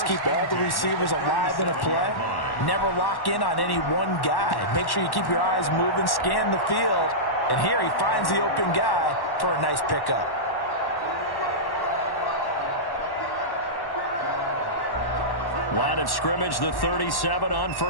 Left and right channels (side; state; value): right; late; 1.1 ms